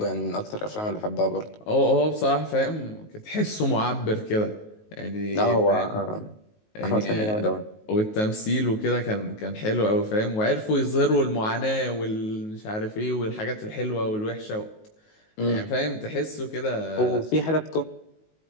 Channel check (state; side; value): late; right; 19 ms